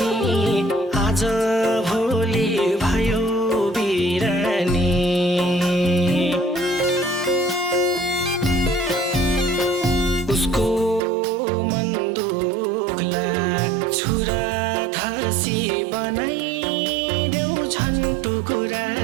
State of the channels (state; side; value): drops out; left; at 11.0 s